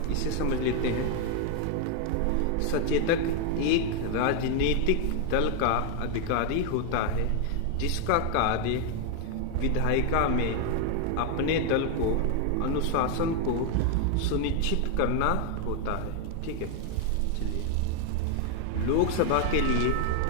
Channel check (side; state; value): both; different; correlation 0.01